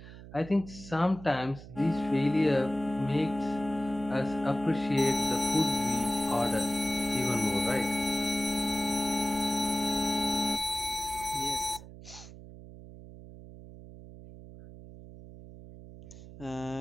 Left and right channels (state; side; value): noise; right; hum, 16 dB below the sound